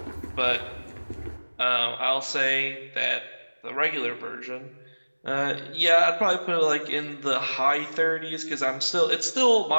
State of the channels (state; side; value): inverted; both; correlation -1.00